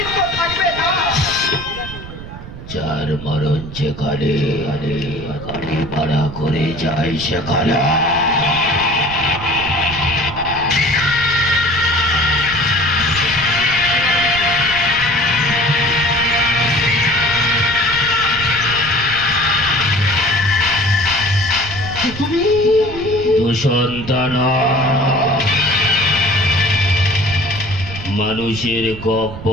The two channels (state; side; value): noise; right; rumble, 12 dB below the sound